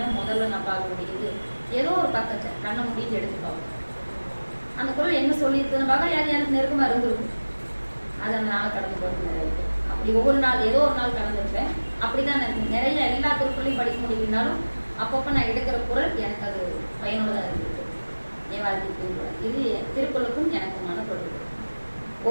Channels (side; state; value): both; inverted; correlation -1.00